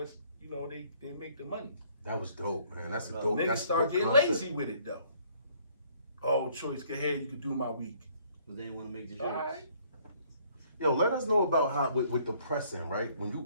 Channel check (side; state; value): both; inverted; correlation -0.61